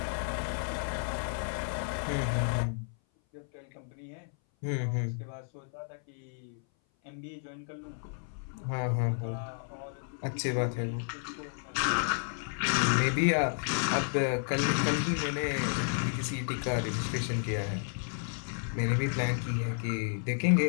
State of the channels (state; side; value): silent; right; 56 dB below the other